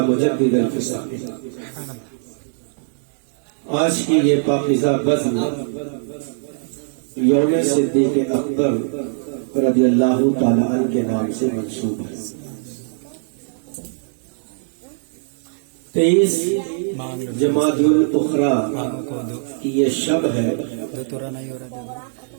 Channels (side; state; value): left; silent; digital silence